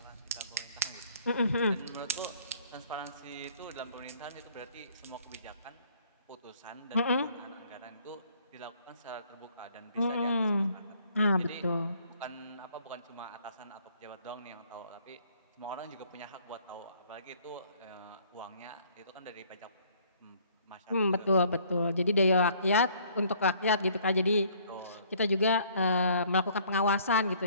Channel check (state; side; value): inverted; both; correlation -0.60